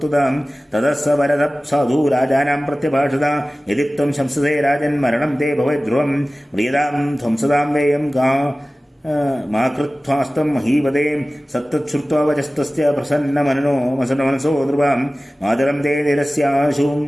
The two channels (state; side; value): normal; both; correlation 0.97